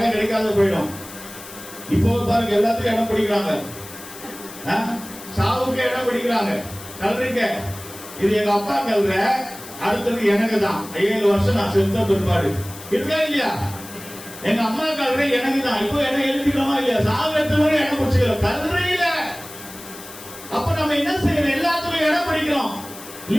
கிடைக்காத போயிடும். இப்போ பாருங்க, எல்லாத்துக்கும் இடம் பிடிக்கிறாங்க, சாவுக்கு இடம் பிடிக்கிறாங்க, கல்றிக்க. இது எங்க அப்பா கல்ற, அடுத்தது எனக்கு தான். 7 வருஷம் நான் செத்த பிற்பாடு இருக்கா இல்லையா? எங்க அம்மா கல்ற எனக்கு தான். இப்போ இடம் எழுதிக்கிறோமா இல்லையா? சாவு எடுத்து இடம் பிடிச்சிக்கிறோம், கல்றையில. அப்ப நம்ம என்ன செய்யணும்? எல்லாத்துக்கும் இடம் பிடிக்கிறோம்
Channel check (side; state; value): left; noise; hiss, 15 dB below the sound